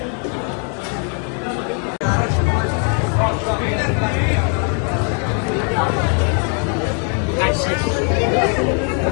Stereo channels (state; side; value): quieter; right; 39.3 dB